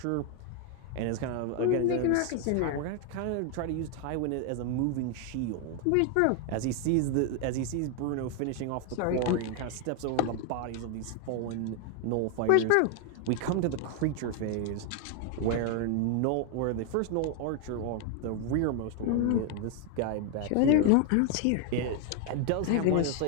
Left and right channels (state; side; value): different; both; correlation 0.01